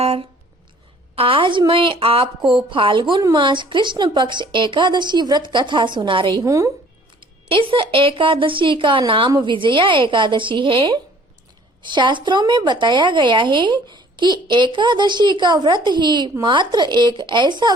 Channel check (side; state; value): both; normal; correlation 0.54